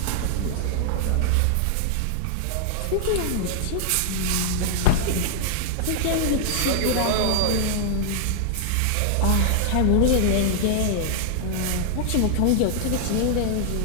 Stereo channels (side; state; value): both; different; correlation -0.01